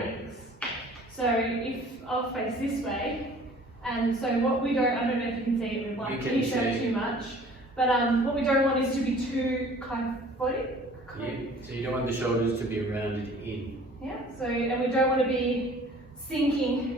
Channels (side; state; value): both; normal; correlation 0.50